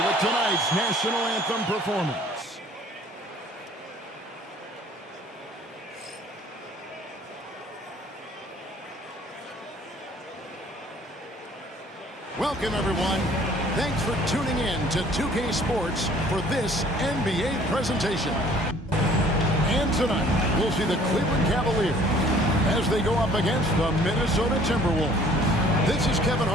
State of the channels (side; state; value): both; normal; correlation 0.55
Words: with tonight's national anthem performance. Welcome, everyone. Thanks for tuning in to 2K Sports for this NBA presentation. And tonight, we'll see the Cleveland Cavaliers as they go up against the Minnesota Timberwolves. This is Kevin